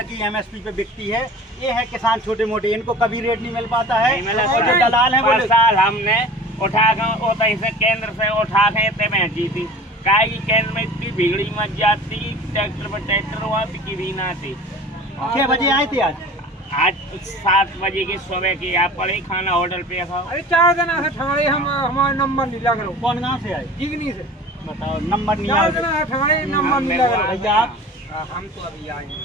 कि एमएसपी पे बिकती है। ये है किसान छोटे मोटे, इनको कभी रेट नहीं मिल पाता है। और जो दलाल है वो साल हमने उठा कर से केंद्र से उठा के इतने बेची थी। काय की केंद्र में इतनी भीड़ी मच जाती, ट्रैक्टर पर ट्रैक्टर हुआ बिकी भी ना थी। 6 बजे आए थे आज 7 बजे की सुबह की आप पड़े खाना होटल पे खाओ। अरे 4 दिन ठगाड़े हम हमारा नंबर नहीं लग रहा। कौन गाँव से आए? जिगनी से। बताओ नंबर नहीं 4 दिन ठगाड़े नंबर नहीं लग रहा। भैया आप? हम तो अभी आए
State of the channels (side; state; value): both; normal; correlation 0.41